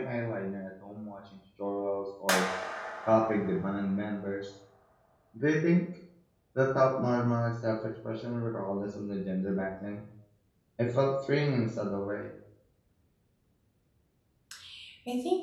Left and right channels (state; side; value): identical; both; correlation 1.00